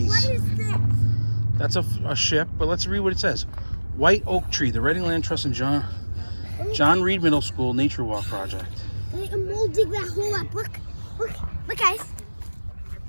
What is this? That's a ship, but let's read what it says. White oak tree, the Reading Land Trust and John Reed Middle School Nature Walk Project. We'll dig that hole up. Look, guys.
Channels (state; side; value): inverted; both; correlation -1.00